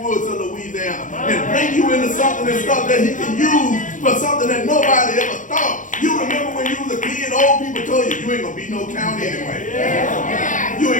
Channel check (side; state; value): right; late; 0.37 ms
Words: of Louisiana and bring you into something and stuff that he can use for something that nobody ever thought. You remember when you was a kid, old people told you, you ain't going to be no count anyway. You